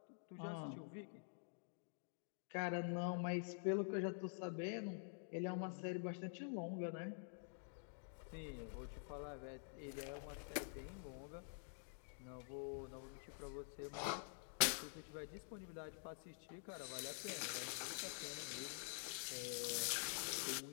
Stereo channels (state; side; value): silent; right; digital silence